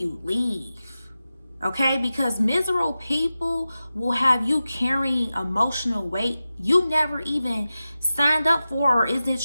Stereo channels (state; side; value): inverted; both; correlation -0.94